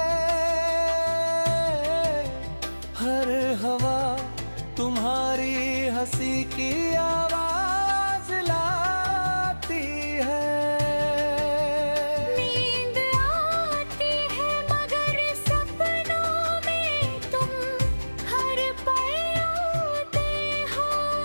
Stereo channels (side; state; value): both; inverted; correlation -1.00